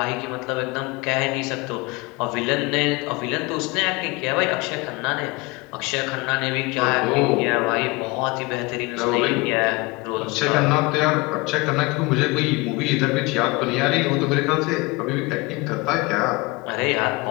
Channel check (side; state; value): right; quieter; 24.7 dB